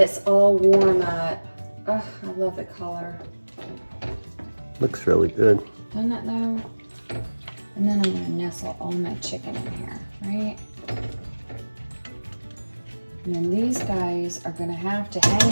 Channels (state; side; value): inverted; both; correlation -1.00